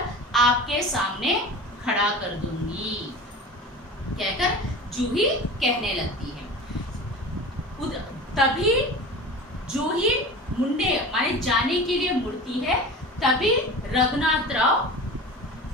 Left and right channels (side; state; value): both; normal; correlation 0.34